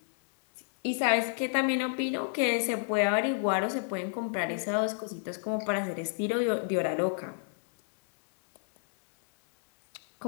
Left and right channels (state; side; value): silent; right; 58 dB below the other